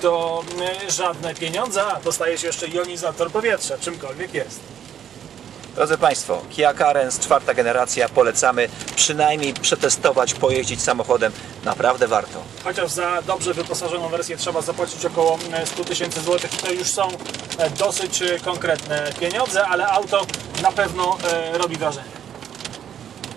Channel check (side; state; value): left; quieter; 9.4 dB